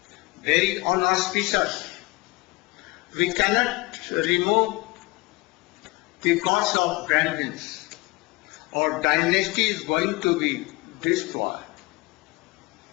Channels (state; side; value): quieter; right; 23.4 dB